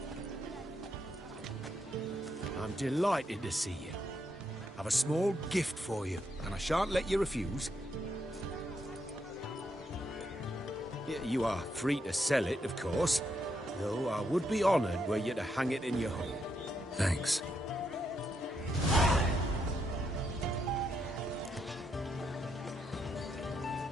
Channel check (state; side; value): normal; both; correlation 0.79